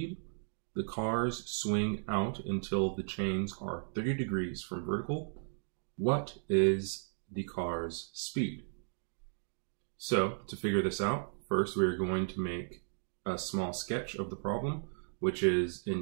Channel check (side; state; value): left; silent; digital silence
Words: The cars swing out until the chains are 30 degrees from vertical. What is the car's speed? So, to figure this out, first we are going to make a small sketch of the problem, which is